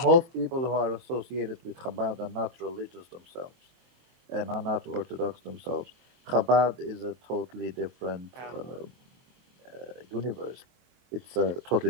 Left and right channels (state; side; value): late; left; 23 ms